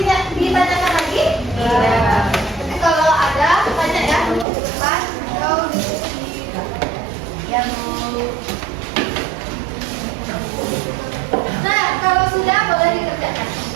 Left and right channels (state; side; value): drops out; left; at 4.5 s